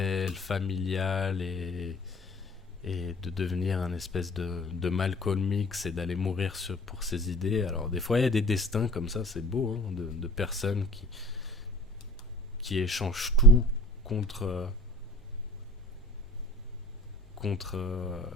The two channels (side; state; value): both; normal; correlation 0.44